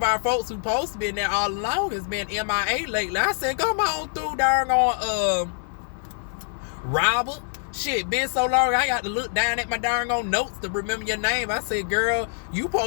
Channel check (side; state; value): right; silent; 56 dB below the other